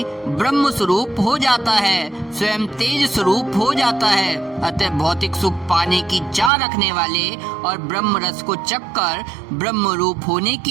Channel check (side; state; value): left; drops out; at 6.5 s